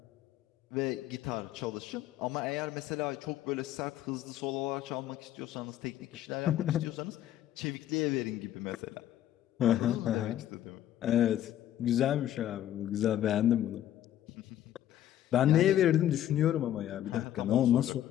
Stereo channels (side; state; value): right; quieter; 12.0 dB